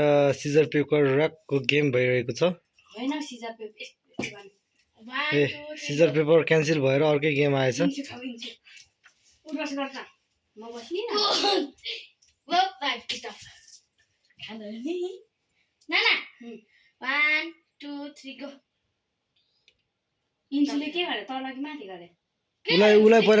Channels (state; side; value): identical; both; correlation 1.00